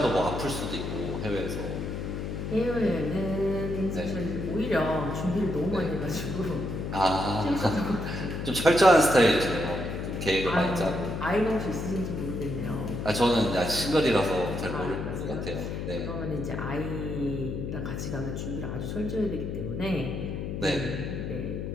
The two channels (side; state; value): left; noise; hum, 4 dB below the sound